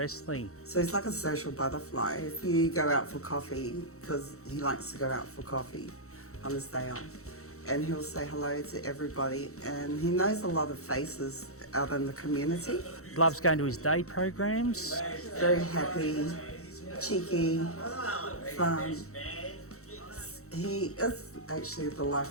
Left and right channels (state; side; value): late; right; 0.64 ms